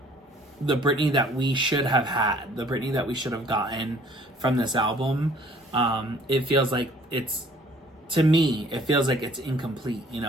the Britney that we should have had, the Britney that we should have gotten from this album. It feels like it's, to me, it feels like it's incomplete. You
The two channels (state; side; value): normal; both; correlation 0.55